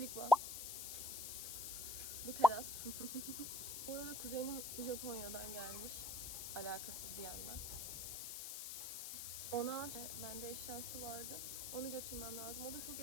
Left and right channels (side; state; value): left; noise; hiss, 4 dB below the sound